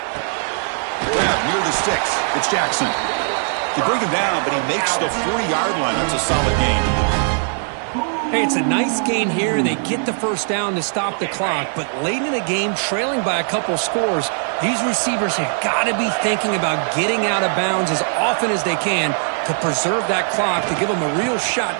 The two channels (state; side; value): silent; left; 62 dB below the other